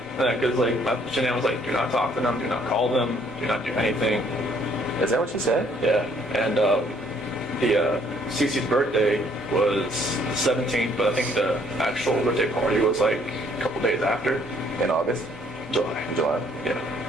Because like, Shanann was like, do not talk to them, do not call them, do not do anything. Is that what she said? Yeah. And Cece's birthday was the 17th, but I think the actual birthday party was like a couple days after. In August? July. July. Yeah.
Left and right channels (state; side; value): normal; both; correlation 0.63